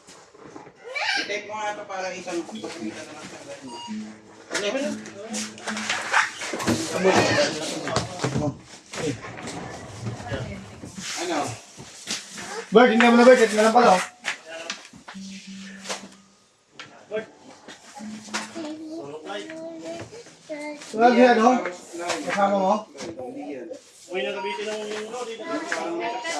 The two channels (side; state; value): both; identical; correlation 1.00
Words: I-type mo nga ito para isang pagkita na lang sa ano? Bert, hindi mo na Bert. Ito na lang pala. Lagi ano? Kasama mo? Uy, nakabitin ng lori.